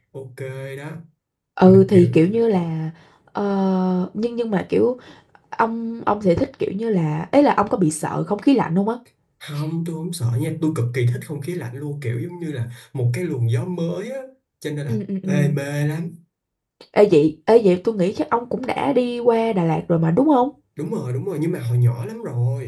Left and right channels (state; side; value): identical; both; correlation 1.00